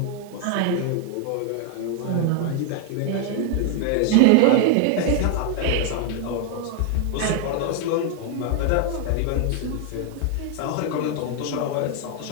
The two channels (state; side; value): different; both; correlation 0.00